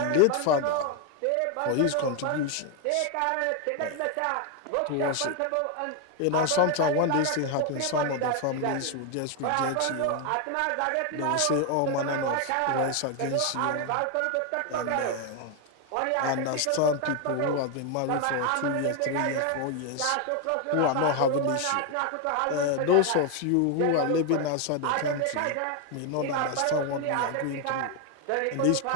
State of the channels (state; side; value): different; both; correlation 0.01